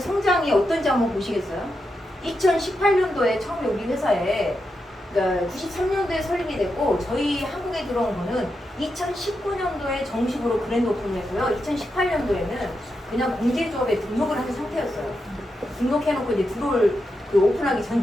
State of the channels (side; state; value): both; normal; correlation 0.86